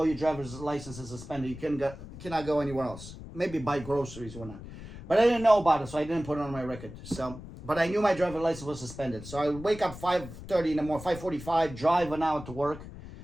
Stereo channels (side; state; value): left; noise; rumble, 13 dB below the sound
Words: your driver's license is suspended, you cannot go anywhere else. Maybe buy groceries or not. But I didn't know about it, so I didn't put it on my record. So, but I knew my driver's license was suspended. So I would wake up 5:30 in the morning, 5:45, drive an hour to work